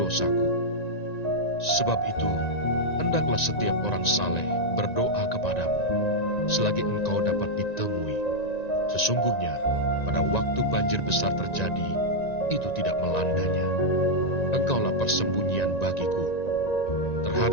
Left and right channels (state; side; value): late; right; 1.9 ms